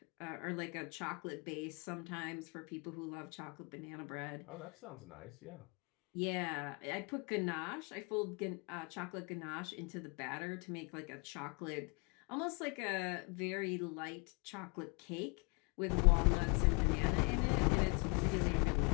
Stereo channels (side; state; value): right; quieter; 32.3 dB